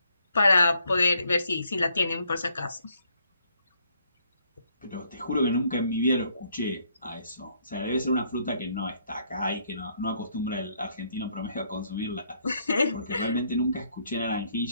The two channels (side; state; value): both; inverted; correlation -0.71